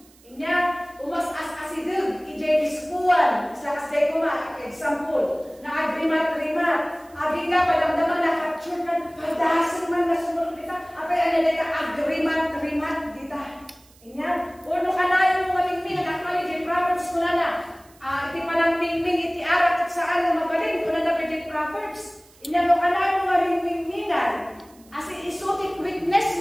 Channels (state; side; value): noise; right; hiss, 28 dB below the sound